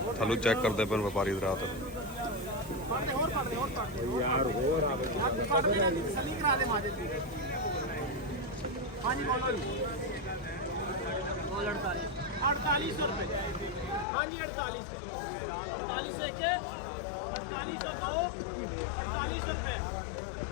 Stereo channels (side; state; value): right; drops out; at 14.1 s